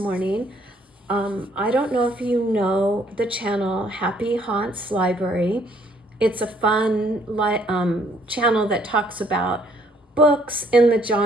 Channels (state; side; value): normal; both; correlation 0.65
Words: I don't know if you know the channel Happy Haunts Library. It's a fun channel that talks about books in the